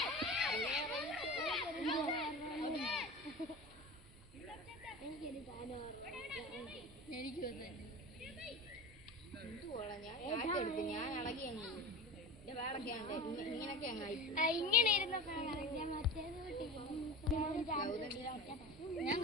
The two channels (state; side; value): normal; both; correlation 0.32